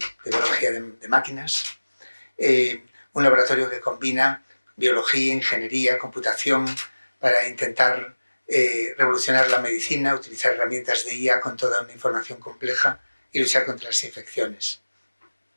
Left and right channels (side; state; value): both; inverted; correlation -1.00